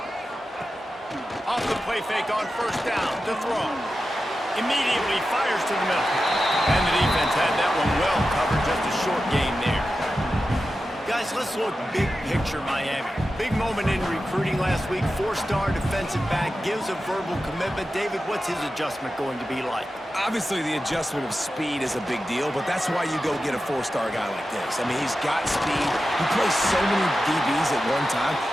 Off the play fake on first down to throw. Immediately fires to the middle. And the defense had that one well covered, just a short gain there. Guys, let's look big picture Miami. Big moment in recruiting last week. 4-star defensive back gives a verbal commitment. David, what's his adjustment going to be like? Obviously, the adjustment of speed is a big deal, but that's why you go get a 4-star guy like this. I mean, he's got speed. He plays so many DBs at one time.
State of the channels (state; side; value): normal; both; correlation 0.92